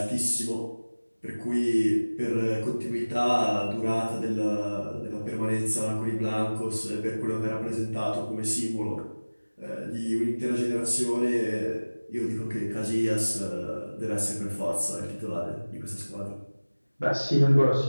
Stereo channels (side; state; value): both; inverted; correlation -1.00